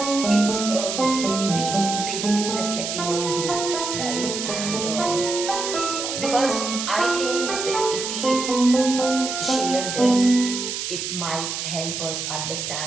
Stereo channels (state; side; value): noise; right; hiss, 4 dB below the sound